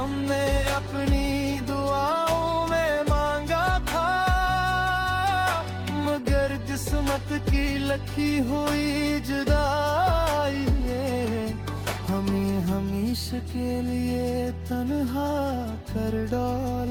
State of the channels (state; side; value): identical; both; correlation 1.00